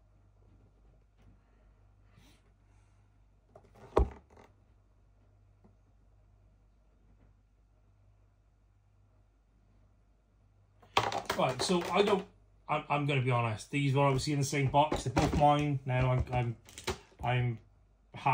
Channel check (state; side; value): identical; both; correlation 1.00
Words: Right, so I'm going to be honest. These were obviously in the same box. They're both mine. Now I'm